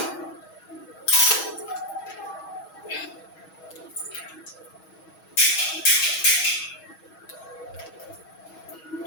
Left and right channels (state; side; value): late; right; 6.3 ms